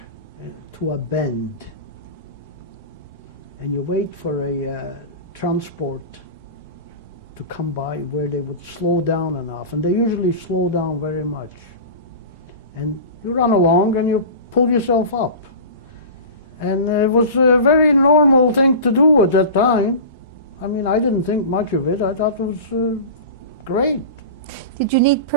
to a bend. And you wait for a transport to come by where they would slow down enough. And they usually slow down very much. And you run along and you pull yourself up. And it was a very normal thing to do at that time. I mean, I didn't think much of it. I thought it was great. Did you need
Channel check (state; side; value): inverted; both; correlation -0.32